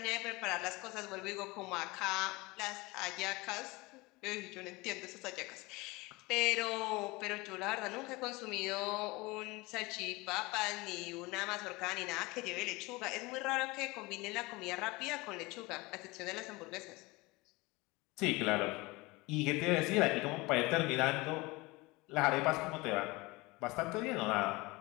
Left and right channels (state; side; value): quieter; right; 23.2 dB